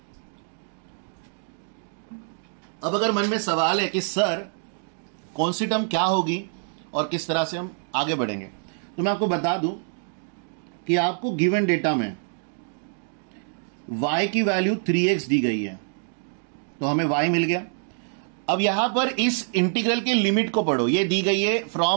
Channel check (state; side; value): silent; left; digital silence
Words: अब अगर मन में सवाल है कि सर कौन सी टर्म क्या होगी और किस तरह से हम आगे बढ़ेंगे, तो मैं आपको बता दूं कि आपको गिवन डेटा में y की वैल्यू 3x दी गई है, तो हमें y मिल गया। अब यहां पर इस इंटीग्रल के लिमिट को पढ़ो, ये दी गई है